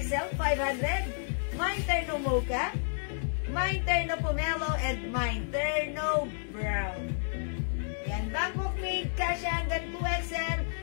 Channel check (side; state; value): right; silent; digital silence